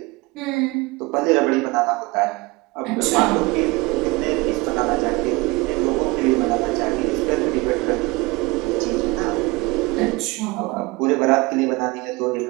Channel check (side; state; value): left; quieter; 23.8 dB